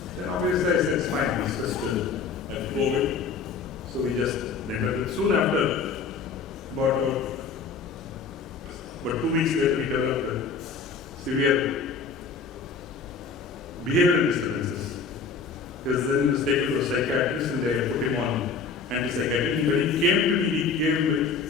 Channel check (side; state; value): right; quieter; 5.1 dB